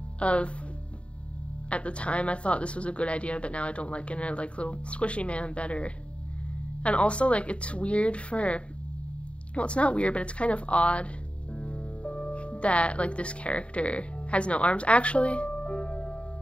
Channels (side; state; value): right; late; 0.060 ms